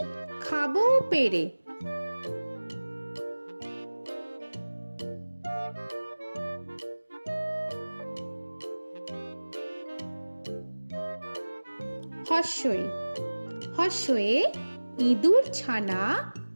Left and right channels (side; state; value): both; inverted; correlation -1.00